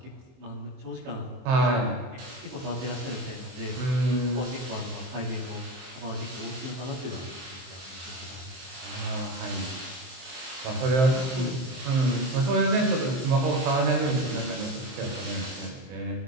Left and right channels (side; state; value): left; late; 23 ms